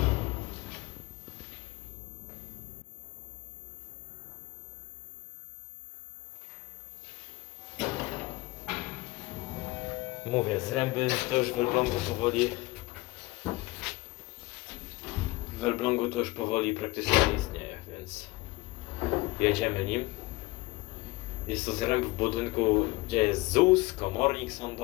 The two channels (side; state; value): right; quieter; 22.0 dB